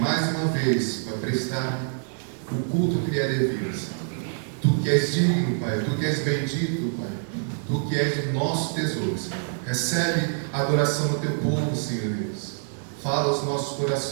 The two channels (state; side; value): silent; left; digital silence